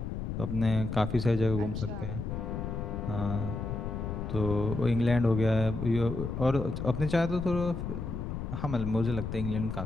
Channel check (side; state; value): left; noise; rumble, 5 dB below the sound